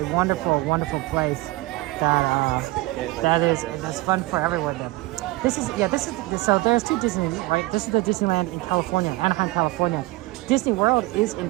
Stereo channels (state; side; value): quieter; left; 20.2 dB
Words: wonderful place that is fun for everyone there. So there's two Disneylands, right? This is the Disneyland in California, Anaheim, California. Disney World is in